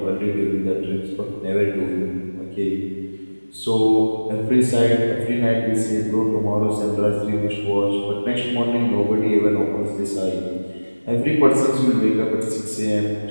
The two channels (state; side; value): inverted; both; correlation -1.00